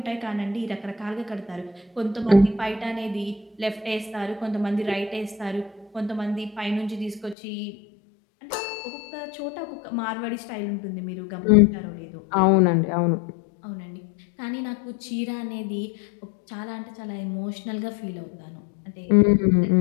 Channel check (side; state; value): right; drops out; at 7.4 s